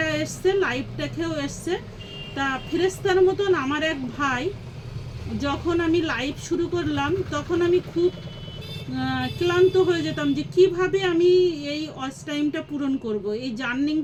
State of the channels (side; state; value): both; identical; correlation 1.00